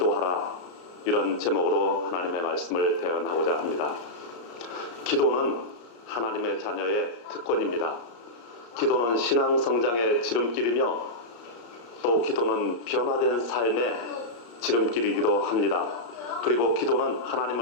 이런 제목으로 하나님의 말씀을 대언하고자 합니다. 기도는 하나님의 자녀의 특권입니다. 기도는 신앙 성장의 지름길이며 또 기도는 변화된 삶의 지름길이기도 합니다. 그리고 기도는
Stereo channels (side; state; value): right; late; 34 ms